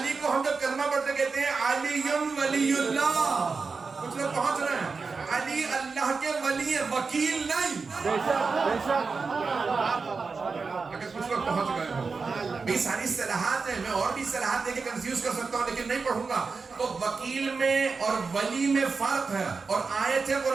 کو ہم جب کلمہ پڑھتے کہتے ہیں علی ولی اللہ. کچھ لوگ پہنچ رہے ہیں. علی اللہ کے ولی ہیں، وکیل نہیں. اگر کچھ لوگ پہنچ گئے ہوں. یہ ساری اصطلاحات ہیں، میں اور بھی اصطلاحات دے کے کنفیوز کر سکتا ہوں لیکن نہیں پڑھوں گا. تو وکیل میں اور ولی میں فرق ہے. اور آیت ہے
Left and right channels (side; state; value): left; quieter; 4.6 dB